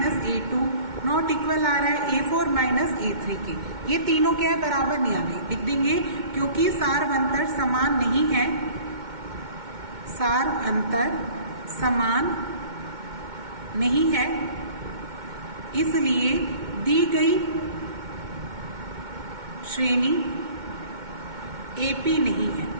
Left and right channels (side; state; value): left; late; 2.2 ms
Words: A2, not equal आ रहा है A4 माइनस A3 के। ये तीनों क्या है, बराबर नहीं आ रही। लिख देंगे क्योंकि सारवंतर समान नहीं है, सारवंतर समान नहीं है, इसलिए दी गई श्रेणी एपी नहीं है,